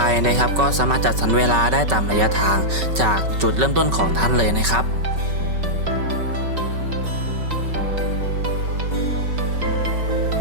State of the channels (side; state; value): left; late; 5.3 ms